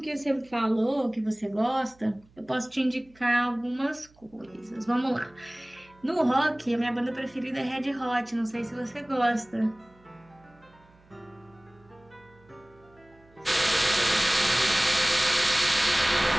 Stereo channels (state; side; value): noise; right; hum, 29 dB below the sound